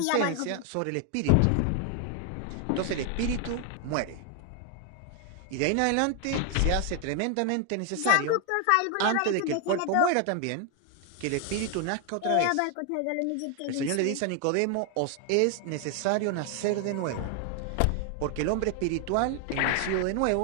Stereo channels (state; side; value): different; both; correlation 0.01